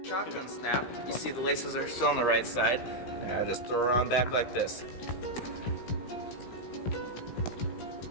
Shotgun snap, you see the laces are still on the right side. And I just throw around back like this.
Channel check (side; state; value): right; late; 16 ms